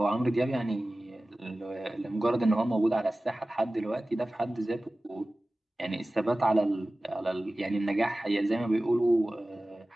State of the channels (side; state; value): both; normal; correlation 0.97